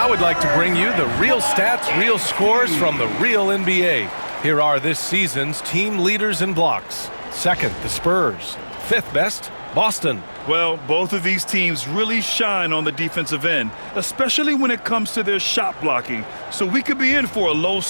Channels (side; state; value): both; inverted; correlation -1.00